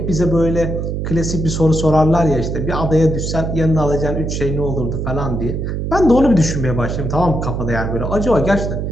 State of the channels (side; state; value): right; noise; hum, 3 dB below the sound